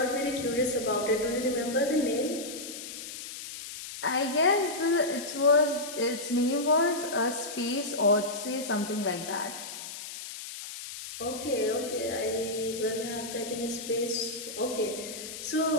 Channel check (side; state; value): left; noise; hiss, 10 dB below the sound